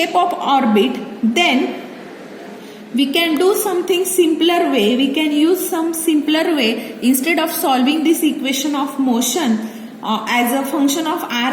of orbit, then we can do something simpler way. We can use some simpler way. Instead of solving this equation of motion as a function of r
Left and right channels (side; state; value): both; identical; correlation 1.00